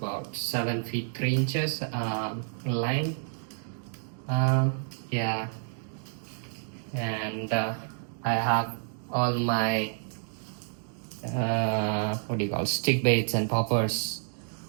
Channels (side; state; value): left; silent; digital silence